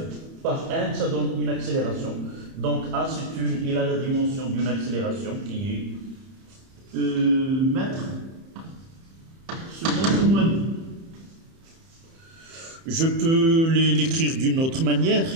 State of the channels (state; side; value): late; left; 30 ms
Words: par n, ça donne une accélération. Donc A il a la dimension d'une accélération qui est mètres seconde moins 2. Je peux l'écrire d'une autre manière